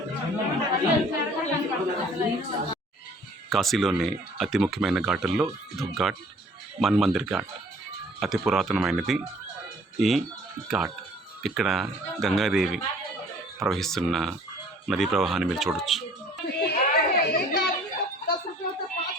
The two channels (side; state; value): both; normal; correlation 0.54